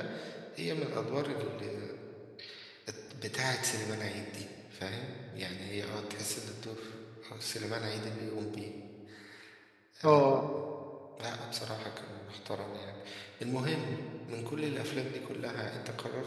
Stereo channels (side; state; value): both; identical; correlation 1.00